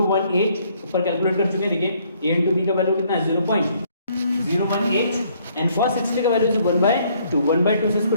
ऊपर कैलकुलेट कर चुके हैं, देखिए A इंटू B का value कितना है 0.018 एंड cos 60 का वैल्यू 1/2, 1/2 से इसको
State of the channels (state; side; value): inverted; both; correlation -0.65